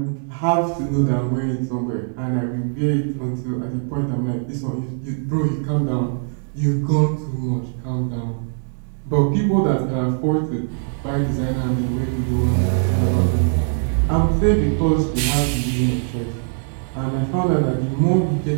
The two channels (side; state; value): left; silent; 65 dB below the other